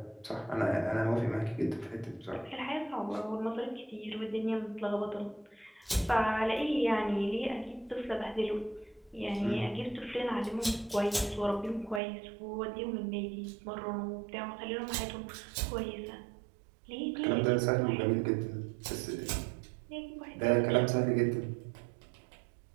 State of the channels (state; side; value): drops out; left; at 12.0 s